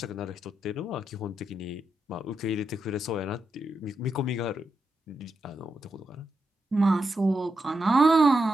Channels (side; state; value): both; normal; correlation 0.85